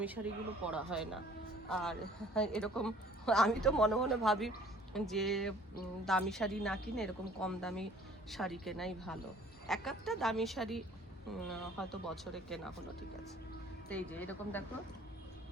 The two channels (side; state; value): both; normal; correlation 0.53